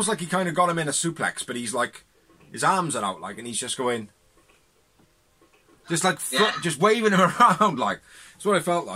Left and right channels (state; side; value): identical; both; correlation 1.00